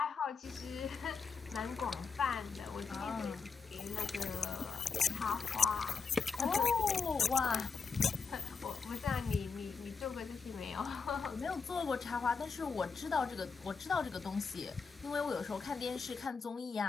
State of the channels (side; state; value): right; quieter; 5.3 dB